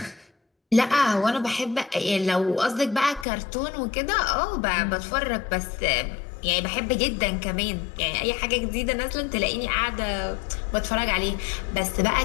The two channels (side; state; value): right; drops out; at 3.2 s